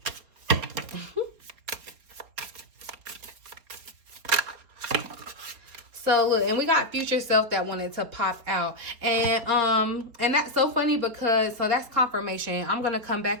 So look, and we got future self that wanted to pop out. And that's so funny because, so that's confirmation. I'm going to come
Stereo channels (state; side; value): late; left; 4.3 ms